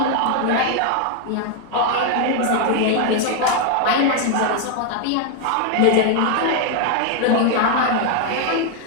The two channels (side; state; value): both; different; correlation 0.00